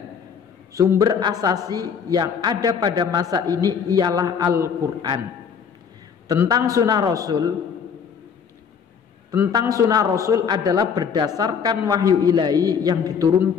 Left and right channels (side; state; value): right; quieter; 6.8 dB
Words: Sumber asasi yang ada pada masa ini ialah Al-Quran. Tentang sunnah Rasul adalah berdasarkan wahyu ilahi yang